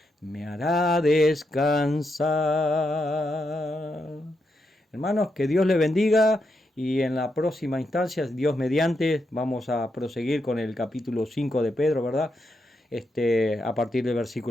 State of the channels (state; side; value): normal; both; correlation 0.83